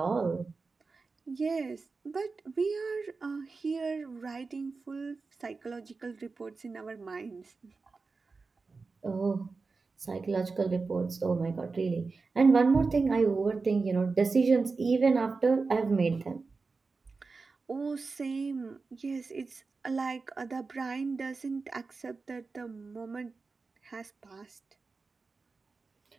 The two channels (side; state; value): left; quieter; 4.2 dB